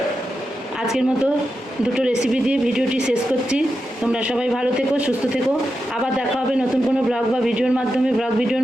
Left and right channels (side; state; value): both; normal; correlation 0.88